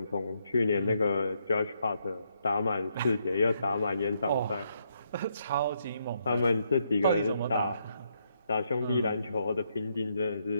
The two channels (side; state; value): both; inverted; correlation -0.77